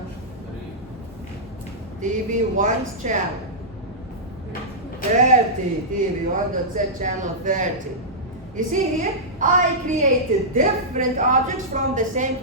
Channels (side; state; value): both; normal; correlation -0.13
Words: TV 1's channel. 30. TV 1 dot set channel 30. You see here, I created different objects from the same